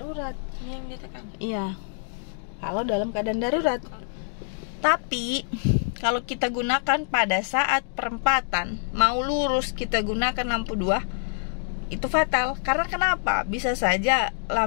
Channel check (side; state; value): right; silent; digital silence